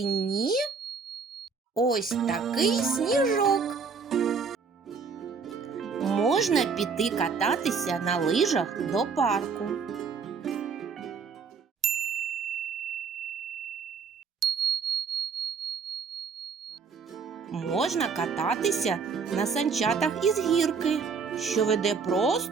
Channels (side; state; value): left; quieter; 5.4 dB